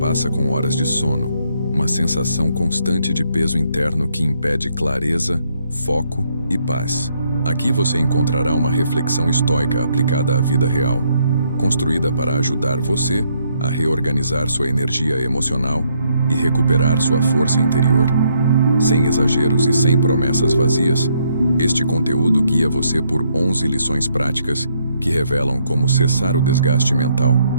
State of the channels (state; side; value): inverted; both; correlation -0.72